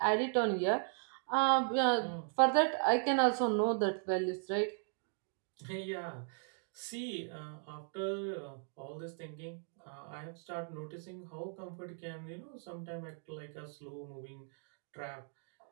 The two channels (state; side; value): silent; left; 53 dB below the other